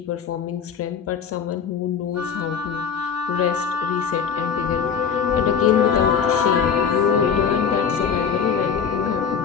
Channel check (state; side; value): quieter; right; 7.0 dB